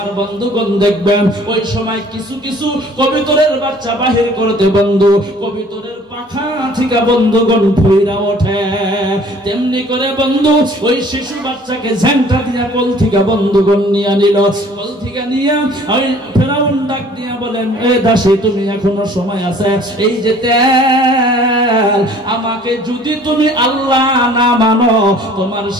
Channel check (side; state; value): both; normal; correlation 0.53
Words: বন্ধুগণ দেখবেন ওই সময় কিছু কিছু কবুতরের বাচ্চা বাহির করতে বন্ধু কবুতরের পাখা থেকে বন্ধুগণ ফুইরা ওঠে, তেমনি করে বন্ধু ওই শিশু বাচ্চাকে ঝাঁটা দিয়া কোল থেকে বন্ধুগণ নিয়ে নিল। কোল থেকে নিয়ে ওই ফেরাউন ডাক দিয়া বলেন, এ দাসী তুমি এখনো সময় আছে, এই যে তেল, আমাকে যদি তুমি আল্লাহ না মানো তোমার